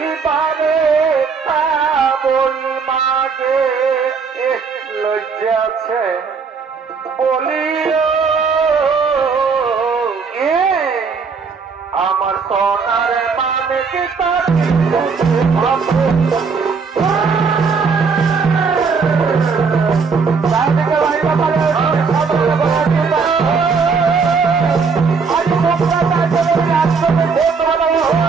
পারে বলি মাঝে লজ্জা আছে বলিও আমার সোনার মানে কি তার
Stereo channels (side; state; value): left; quieter; 5.2 dB